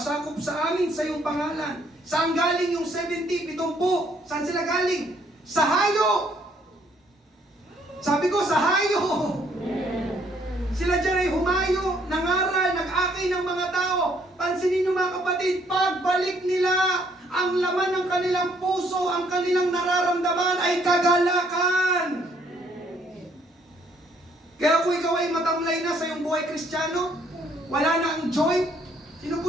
sa amin sa iyong pangalan. Saan galing yung 70, 70? Saan sila galing? Sa hayo! Sabi ko, sa hayo! Sila dyan ay humayo, nangaral, nag-akay ng mga tao. Pansinin nyo mga kapatid, pagbalik nila, ang laman ng kanilang puso, ang kanilang nararamdaman ay kagalakan. Kaya kung ikaw ay matamlay na sa iyong buhay Kristiyano, wala na ang joy. Sino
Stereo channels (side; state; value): both; normal; correlation 0.66